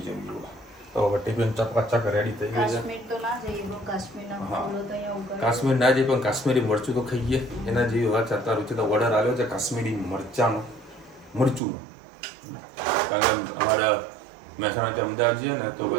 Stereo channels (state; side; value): drops out; left; at 11.6 s